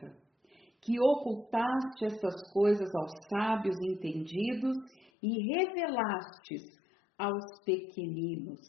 que ocultaste estas coisas aos sábios entendidos e revelastes aos pequeninos.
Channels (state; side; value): drops out; right; at 5.1 s